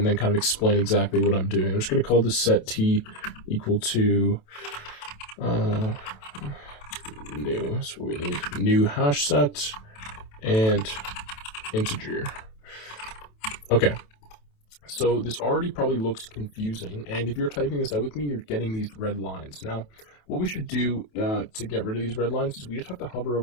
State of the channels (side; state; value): right; late; 27 ms